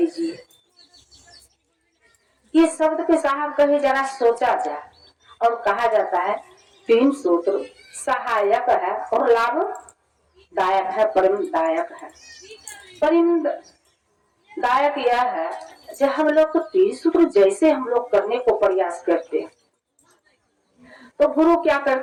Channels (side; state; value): both; identical; correlation 1.00